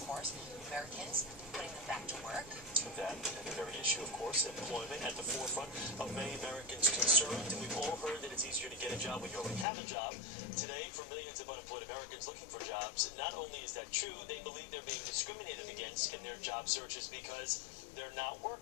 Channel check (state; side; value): drops out; right; at 9.7 s